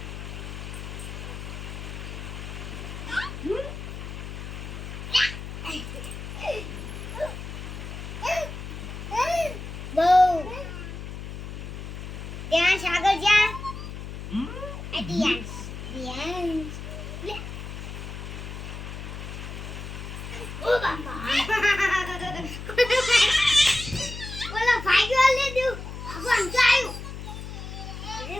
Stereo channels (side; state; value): left; noise; hum, 8 dB below the sound